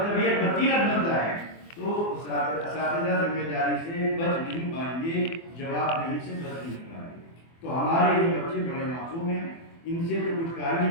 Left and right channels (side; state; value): right; late; 24 ms